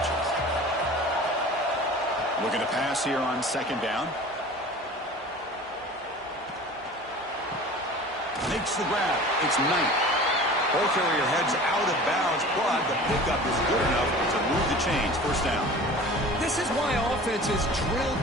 Looking to pass here on second down. Makes the grab. It's Knight. Ball carrier heads out of bounds, but the pickup is good enough to move the chains. First down. This is why offenses drill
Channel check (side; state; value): both; normal; correlation 0.40